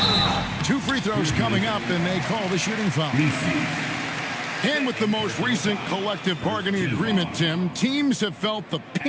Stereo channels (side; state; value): both; identical; correlation 1.00